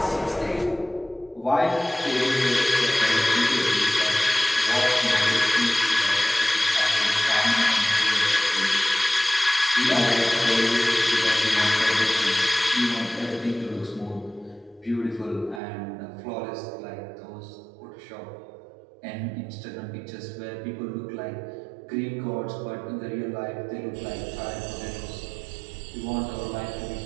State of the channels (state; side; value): drops out; left; at 15.6 s